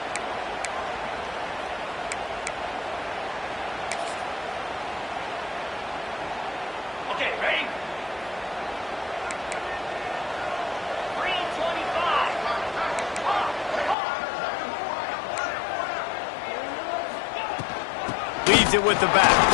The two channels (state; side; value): drops out; right; at 14.0 s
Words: Leads it with the back.